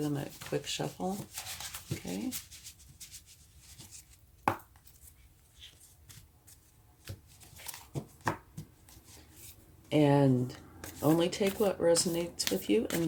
them a quick shuffle. Okay. And only take what resonates with you and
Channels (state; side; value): identical; both; correlation 1.00